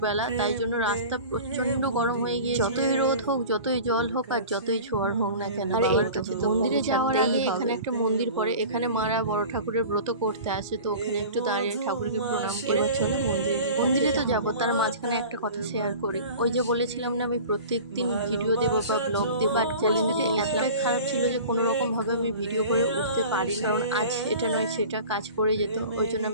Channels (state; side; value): inverted; both; correlation -0.39